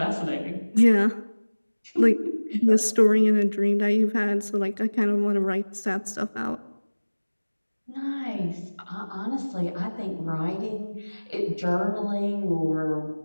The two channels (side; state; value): both; inverted; correlation -1.00